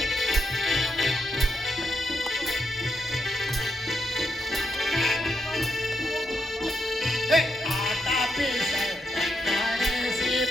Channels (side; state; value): both; normal; correlation 0.81